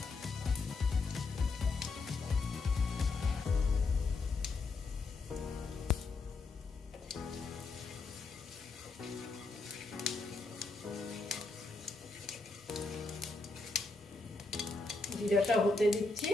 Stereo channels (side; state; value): right; quieter; 3.7 dB